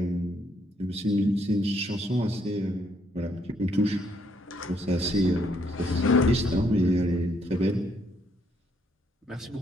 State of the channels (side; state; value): both; normal; correlation 0.71